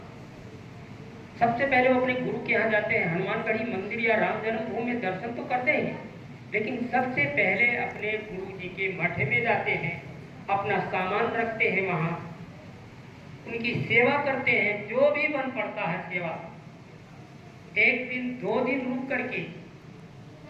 सबसे पहले वो अपने गुरु के यहाँ जाते हैं। हनुमानगढ़ी मंदिर या राम जन्मभूमि में दर्शन तो करते हैं, लेकिन सबसे पहले अपने गुरु जी के मठ में जाते हैं, अपना सामान रखते हैं, वहाँ उनकी सेवा करते हैं। जो भी बन पड़ता है सेवा, 1 दिन 2 दिन रुक करके,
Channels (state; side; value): identical; both; correlation 1.00